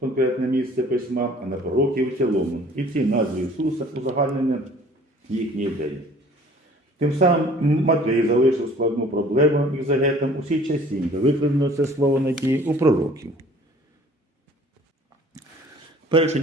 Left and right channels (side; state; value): both; normal; correlation 0.51